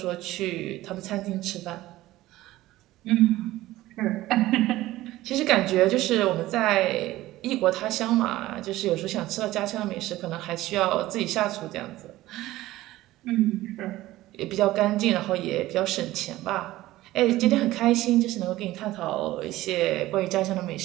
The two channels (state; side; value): quieter; left; 16.5 dB